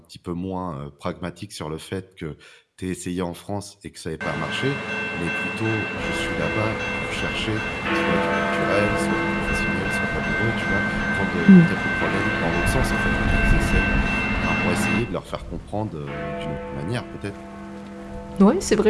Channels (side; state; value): both; identical; correlation 1.00